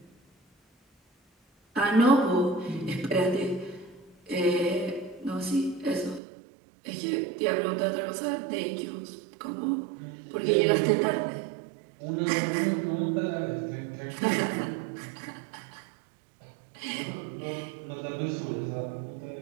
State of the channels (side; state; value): left; drops out; at 6.2 s